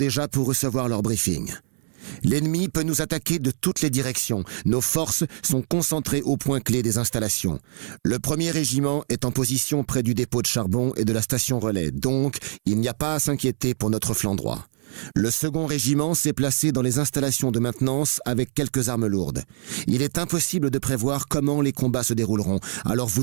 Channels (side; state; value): left; silent; 63 dB below the other